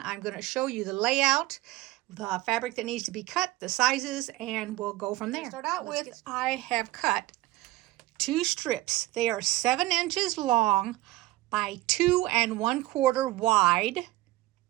I'm going to show you the layout, the fabric that needs to be cut, the sizes, and we'll go from there. Start out with, I have cut 2 strips. They are 7 inches long by 2 1/4 wide.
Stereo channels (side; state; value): left; quieter; 18.0 dB